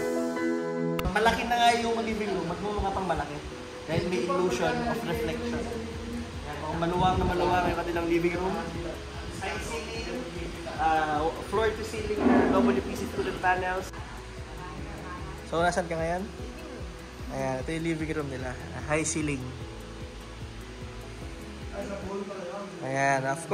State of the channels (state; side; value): identical; both; correlation 1.00